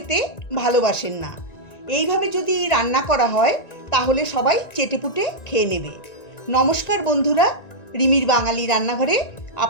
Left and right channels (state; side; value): late; right; 1.9 ms